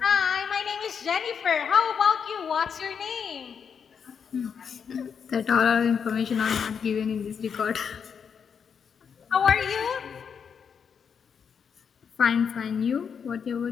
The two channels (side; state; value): right; quieter; 6.8 dB